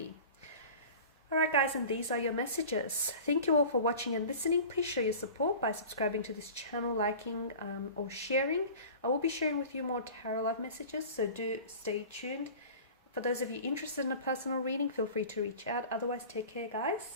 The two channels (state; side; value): inverted; both; correlation -0.39